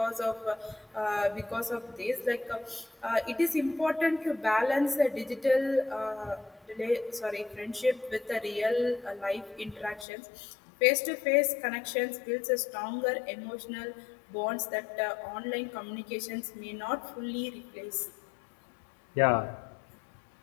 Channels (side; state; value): right; drops out; at 10.1 s